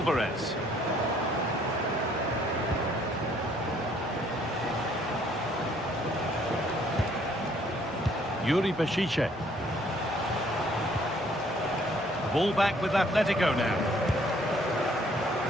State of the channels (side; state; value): both; normal; correlation 0.63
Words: Yuri Bešice. Ball back with Atletico now.